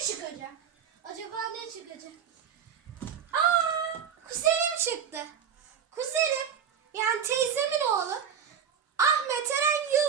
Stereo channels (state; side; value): quieter; left; 7.9 dB